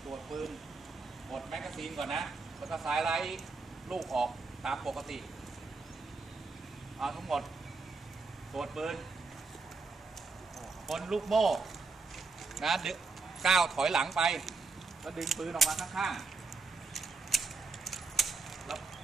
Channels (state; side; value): quieter; left; 4.2 dB